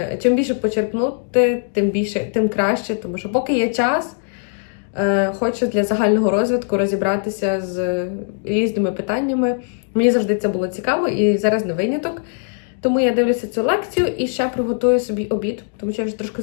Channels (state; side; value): silent; right; digital silence